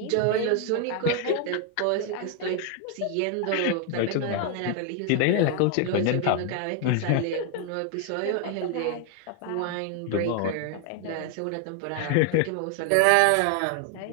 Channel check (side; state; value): both; different; correlation 0.00